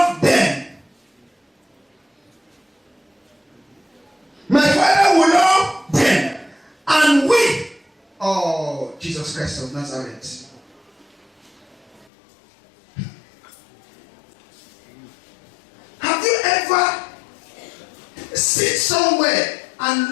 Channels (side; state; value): right; drops out; at 12.1 s